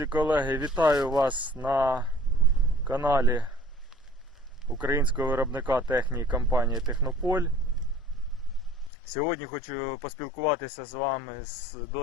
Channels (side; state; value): right; drops out; at 8.9 s